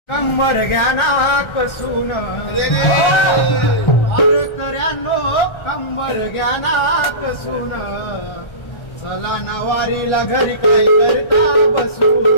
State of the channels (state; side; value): late; right; 1.3 ms